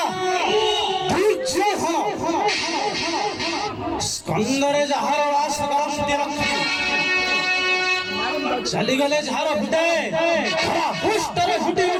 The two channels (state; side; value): identical; both; correlation 1.00